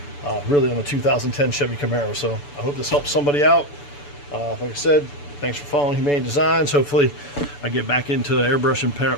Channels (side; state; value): right; late; 6.9 ms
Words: really on the 2010 Chevy Camaro. So I hope this helps somebody out. Like I said, thanks for following Humane Designs. Hopefully I get back into airbrushing,